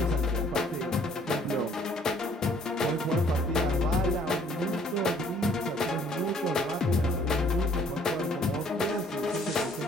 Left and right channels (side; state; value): both; normal; correlation 0.61